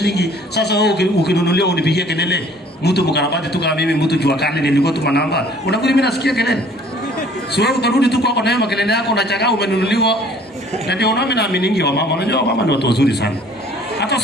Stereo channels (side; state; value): both; normal; correlation 0.54